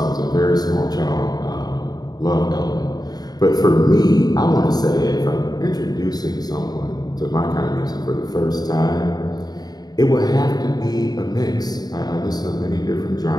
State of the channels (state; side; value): late; right; 0.19 ms